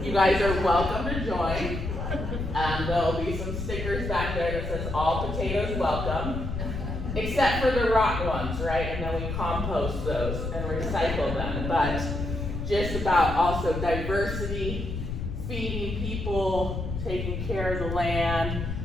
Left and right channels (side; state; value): left; noise; rumble, 4 dB below the sound